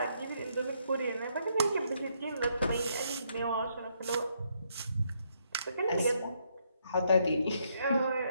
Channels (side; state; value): both; inverted; correlation -0.74